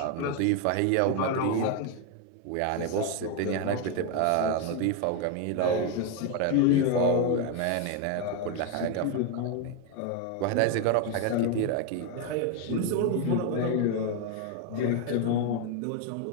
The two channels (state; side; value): different; both; correlation 0.01